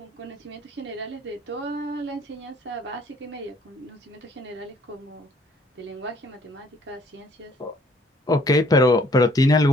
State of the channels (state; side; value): normal; both; correlation 0.61